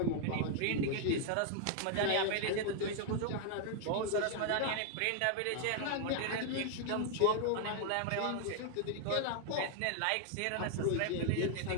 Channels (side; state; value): both; different; correlation 0.00